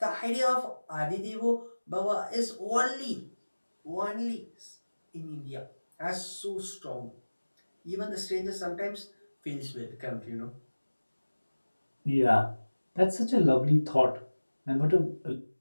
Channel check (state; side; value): inverted; both; correlation -1.00